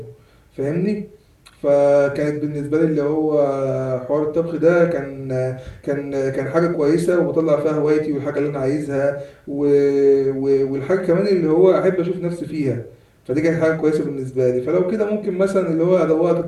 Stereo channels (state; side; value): identical; both; correlation 1.00